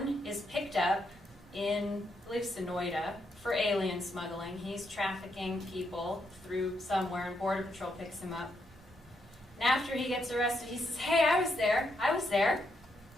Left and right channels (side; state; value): both; normal; correlation 0.79